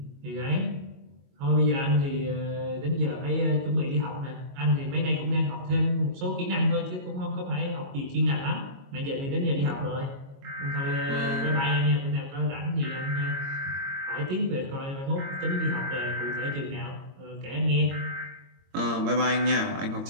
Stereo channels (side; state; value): left; late; 22 ms